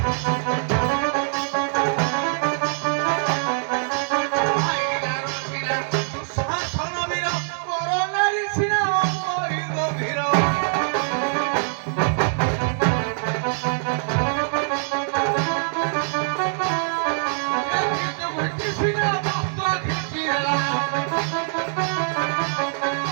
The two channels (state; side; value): silent; left; 63 dB below the other